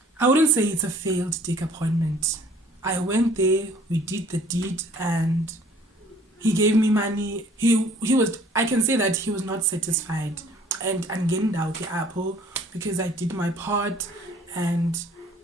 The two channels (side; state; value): both; normal; correlation 0.55